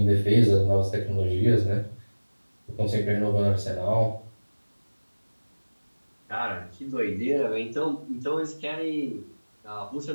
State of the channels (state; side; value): inverted; both; correlation -1.00